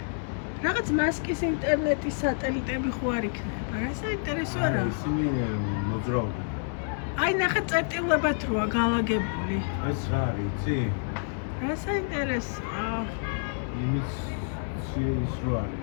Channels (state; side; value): silent; right; 59 dB below the other